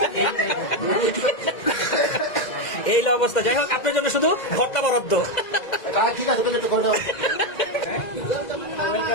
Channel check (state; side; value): late; right; 2.1 ms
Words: এই অবস্থা। যাই হোক, আপনার জন্য শুধু ঘরটা বরাদ্দ। ঠিক আছে করে দাও।